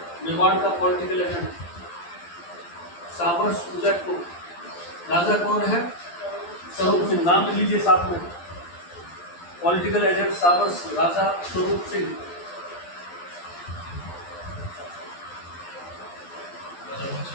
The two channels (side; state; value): right; late; 12 ms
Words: मेवाड़ का पॉलिटिकल एजेंट साबर्स उदयपुर। राजा कौन है? स्वरूप सिंह। नाम लिख लीजिए साथ में। पॉलिटिकल एजेंट साबर्स, राजा Swaroop Singh.